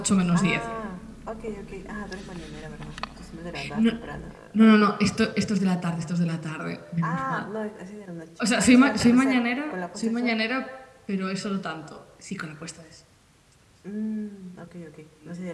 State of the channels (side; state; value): both; identical; correlation 1.00